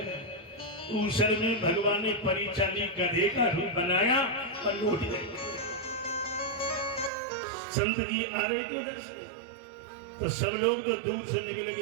ऊसर में भगवान ने परिचाली गधे का रूप बनाया और लौट गए। संत जी आ रहे थे उधर से, तो सब लोग तो दूर से निकले कि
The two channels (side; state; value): left; drops out; at 7.1 s